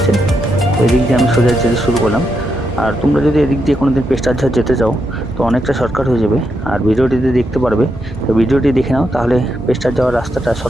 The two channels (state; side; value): normal; both; correlation 0.82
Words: তো এদিক দিয়ে আমি সোজা যেতে শুরু করলাম। আর তোমরা যদি এদিক দিয়ে কোনোদিন পেস্টারঝাড় যেতে চাও তো অনেকটা শর্টকাট হয়ে যাবে। আর ভিডিওটিতে দেখতে পারবে। তো ভিডিওটি দেখে নাও, তাহলে পেস্টার যাওয়ার রাস্তাটা,